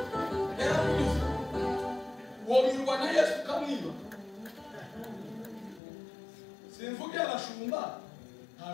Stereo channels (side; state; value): right; drops out; at 5.8 s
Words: womirwa na Yesu kamwiba simvuge abashumba